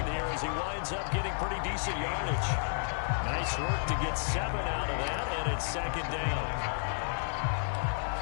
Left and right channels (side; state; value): right; silent; digital silence